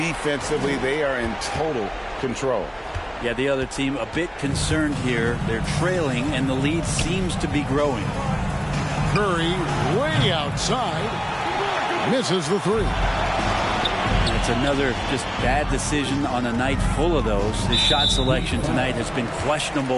they are in total control. Yeah, the other team a bit concerned here. They're trailing, and the lead seems to be growing. Curry way outside. Misses the three. It's another just bad decision on a night full of those. His shot selection tonight has been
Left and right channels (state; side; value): identical; both; correlation 1.00